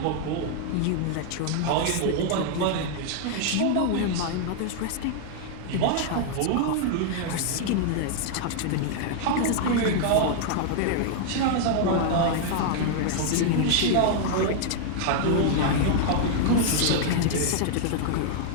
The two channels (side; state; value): both; different; correlation 0.00